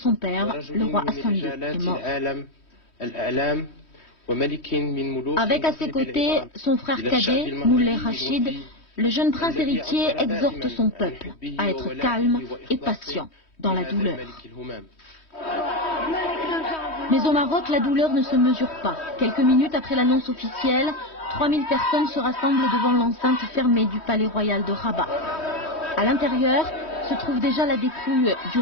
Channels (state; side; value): late; right; 3.1 ms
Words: père, le roi Hassan II, est mort. Avec à ses côtés son frère cadet, Moulay Rachid, le jeune prince héritier exhorte son peuple à être calme et patient dans la douleur. Mais au Maroc, la douleur ne se mesure pas. Quelques minutes après l'annonce officielle, 3000 personnes se rassemblent devant l'enceinte fermée du palais royal de Rabat. À l'intérieur se trouve déjà la dépouille du